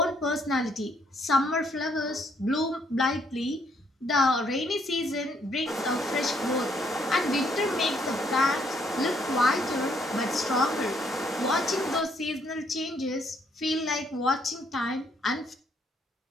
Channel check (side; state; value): both; normal; correlation 0.69